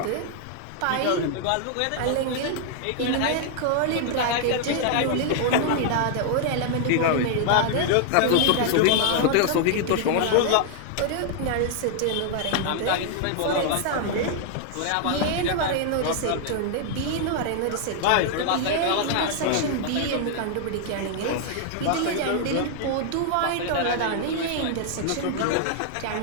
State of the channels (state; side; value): different; both; correlation 0.00